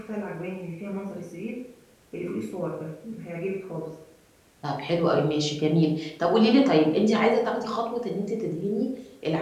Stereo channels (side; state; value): both; identical; correlation 1.00